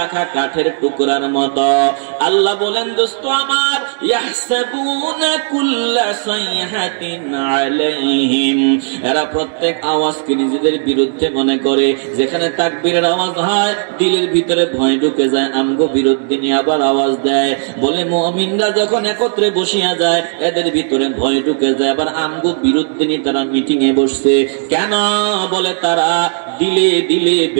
কাঠের টুকরার মতো। আল্লাহ বলেন দোস্ত আমার, ইয়াহসাবুনা কুল্লা সাইহাতিন আলাইহিম, এরা প্রত্যেক আওয়াজকে নিজেদের বিরুদ্ধে মনে করে। যেখানে তাকবীরের আওয়াজ হয় দিলের ভিতরে ভয় ঢুকে যায়, আমগো বিরুদ্ধে নিয়ে আবার আওয়াজ দেয়। বলে মুমিনরা যখন একত্রে বসিয়া যায় এদের ভিতরে ভয় ঢুকে যায়, আবার আমগো বিরুদ্ধে নিয়ে তারা মিটিং এ বসছে। কেন? বলে তারা দিলে দিলে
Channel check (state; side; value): silent; left; 70 dB below the other